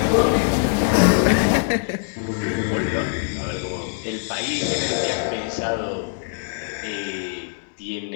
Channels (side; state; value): right; silent; digital silence